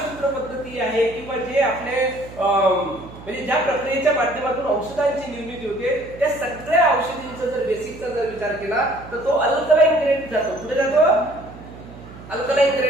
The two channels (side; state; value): right; noise; hum, 17 dB below the sound